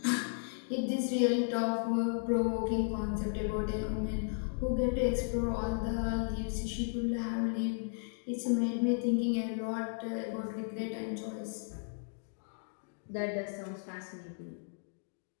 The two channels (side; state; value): right; silent; digital silence